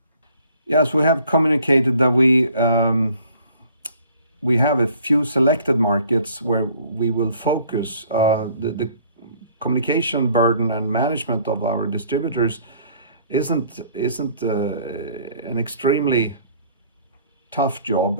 Yes, we have communicated that we have a few selected markets where we will focus. The communication burden and management of our distributors isn't an extremely tough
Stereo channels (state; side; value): inverted; both; correlation -0.56